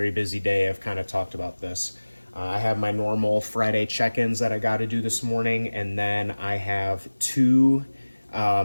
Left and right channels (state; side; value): inverted; both; correlation -1.00